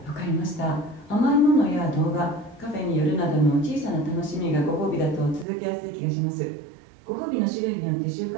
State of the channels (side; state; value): left; drops out; at 5.5 s